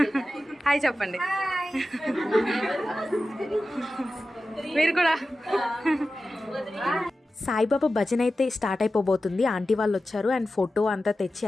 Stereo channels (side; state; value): both; normal; correlation 0.93